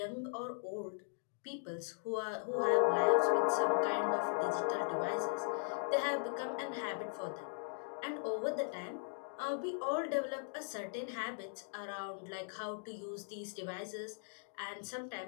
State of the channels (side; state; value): right; silent; digital silence